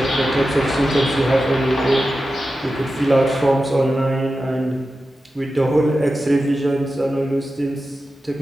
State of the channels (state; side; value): normal; both; correlation 0.92